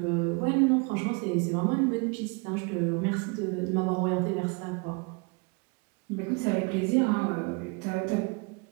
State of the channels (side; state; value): left; quieter; 31.5 dB